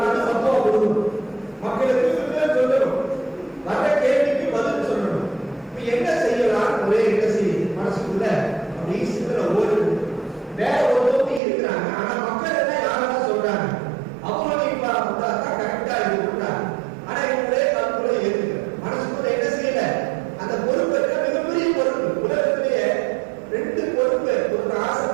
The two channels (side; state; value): left; drops out; at 11.4 s